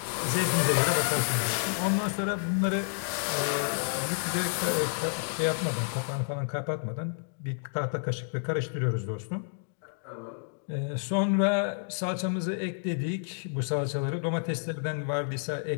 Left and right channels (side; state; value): right; silent; digital silence